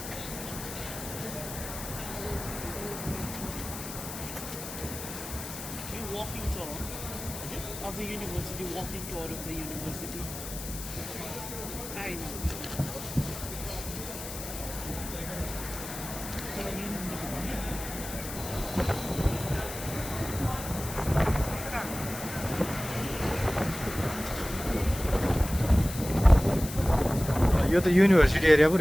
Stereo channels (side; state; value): left; noise; hiss, 9 dB below the sound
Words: walking tour of the university, walking tour of the university. I know. यो त युनिभर्सिटी एरिया पो